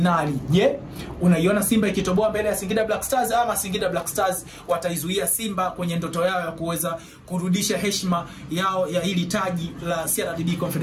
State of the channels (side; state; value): both; identical; correlation 1.00